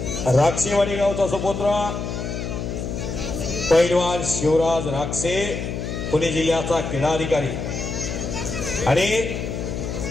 राक्षेवाडी गावचा सुपुत्र पैलवान शिवराज राक्षे पुणे जिल्ह्याचा क्रीडा अधिकारी आणि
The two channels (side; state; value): left; noise; hum, 4 dB below the sound